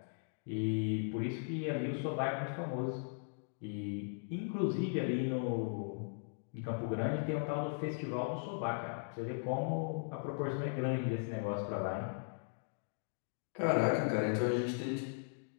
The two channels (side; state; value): right; silent; digital silence